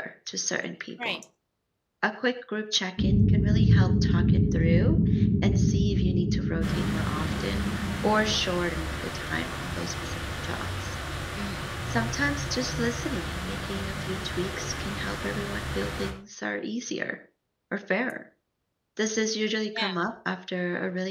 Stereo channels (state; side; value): identical; both; correlation 1.00